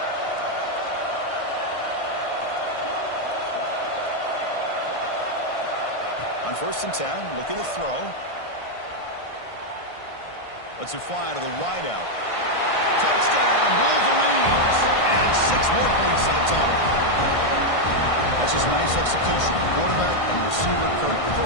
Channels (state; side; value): late; right; 1.5 ms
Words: On 1st and 10, looking to throw. Lets it fly to the wideout. Touchdown, Wolverines! And 6 more points to the total. That's just nice execution. Quarterback and receiver